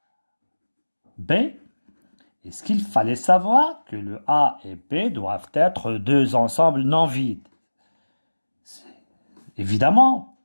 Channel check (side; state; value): both; inverted; correlation -1.00